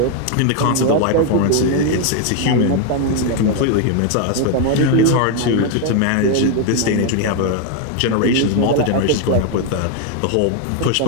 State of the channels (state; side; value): different; both; correlation 0.01